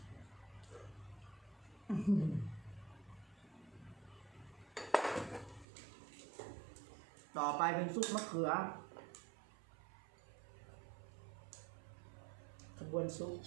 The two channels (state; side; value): drops out; left; at 5.7 s